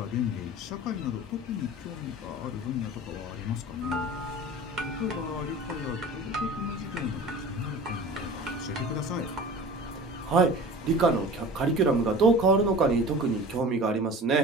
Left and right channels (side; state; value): both; normal; correlation 0.38